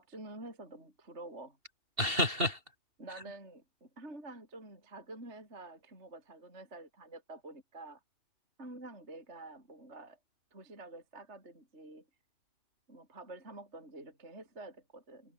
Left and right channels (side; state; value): left; late; 2.7 ms